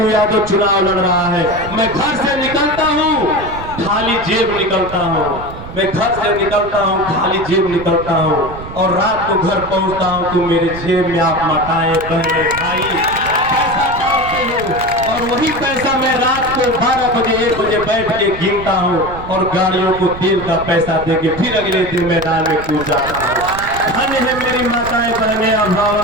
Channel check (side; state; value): right; noise; rumble, 12 dB below the sound